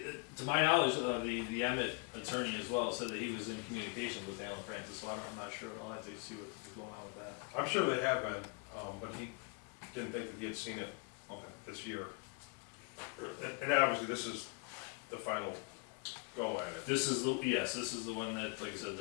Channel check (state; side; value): quieter; right; 33.6 dB